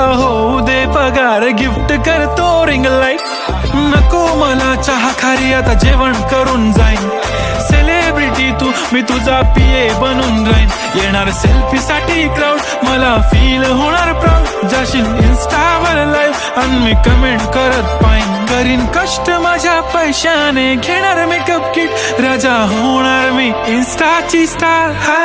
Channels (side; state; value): both; identical; correlation 1.00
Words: होऊ दे पगार गिफ्ट करतो रिंग लाईट. नको मला चहा खारी आता जेवण करून जाईन. सेलिब्रिटी तू मी तुझा पिये बनून राहीन. येणार सेल्फी साठी क्राऊड मला फील होणार प्राऊड. जाशील इन्स्टावर लाईव्ह आणि मी कमेंट करत पाईन. करीन कष्ट माझ्या पैशाने घेणार मेकअप किट. राजा होणार मी इन्स्टाची स्टार.